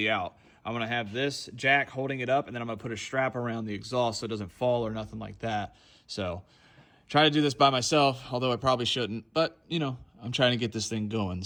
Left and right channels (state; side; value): identical; both; correlation 1.00